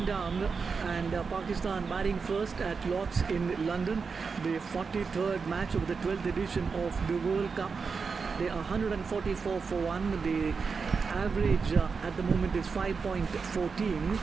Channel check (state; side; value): quieter; left; 5.2 dB